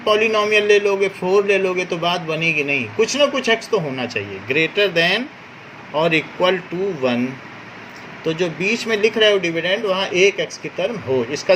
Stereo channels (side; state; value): both; identical; correlation 1.00